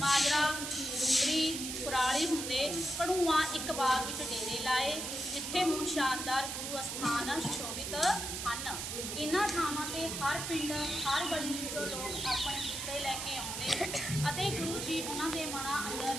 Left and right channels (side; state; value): right; noise; hiss, 4 dB below the sound